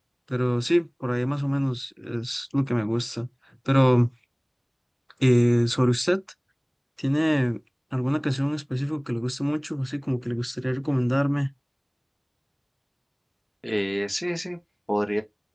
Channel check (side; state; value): both; identical; correlation 1.00